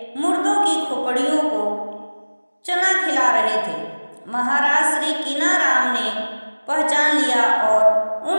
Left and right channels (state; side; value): inverted; both; correlation -1.00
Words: मुर्दों की खोपड़ियों को चना खिला रहे थे। महाराज श्री कीनाराम ने पहचान लिया और